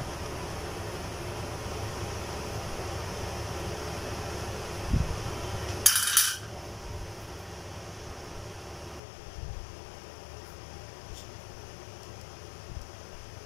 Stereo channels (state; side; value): drops out; right; at 9.0 s